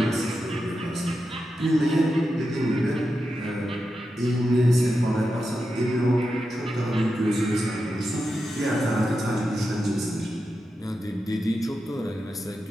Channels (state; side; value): normal; both; correlation 0.89